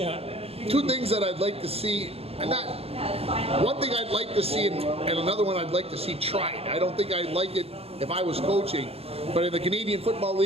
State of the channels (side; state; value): left; late; 0.29 ms